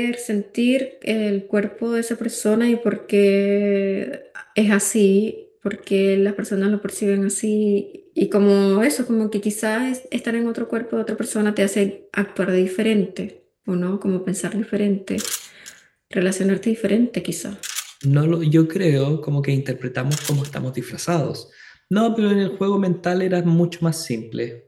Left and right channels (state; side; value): identical; both; correlation 1.00